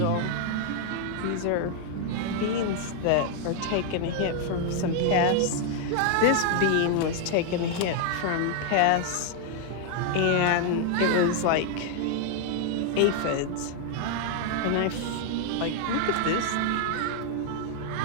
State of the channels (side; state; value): both; different; correlation 0.00